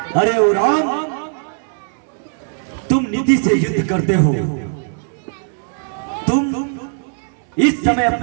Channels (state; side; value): silent; left; 67 dB below the other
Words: अरे ओ राम, तुम निधि से युद्ध करते हो। तुम इस समय